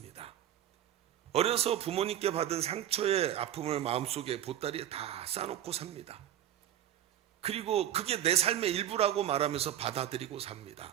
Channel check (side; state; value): left; quieter; 11.3 dB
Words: 어려서 부모님께 받은 상처의 아픔을 마음속에 보따리에 다 싸놓고 삽니다. 그리고 그게 내 삶의 일부라고 말하면서 받아들이고 삽니다.